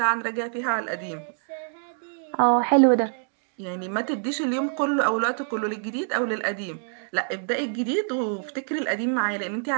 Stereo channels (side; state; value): left; silent; 61 dB below the other